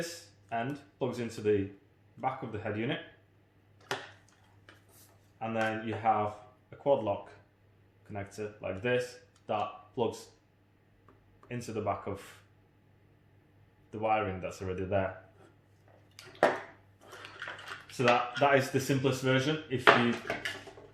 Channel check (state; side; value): identical; both; correlation 1.00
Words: end plugs into the back of the head unit, and then you have a quad lock connector like this that plugs into the back of the wiring that's already there. So that is the simplest version. If you